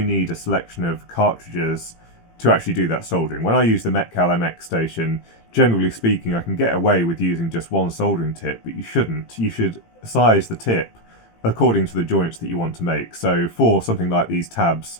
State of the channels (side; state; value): right; late; 18 ms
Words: need a selection of cartridges to actually do that soldering. When I use the Metcal MX station, generally speaking, I can get away with using just one soldering tip, but you shouldn't. You should size the tip according to the joints that you want to make. So for something like these tabs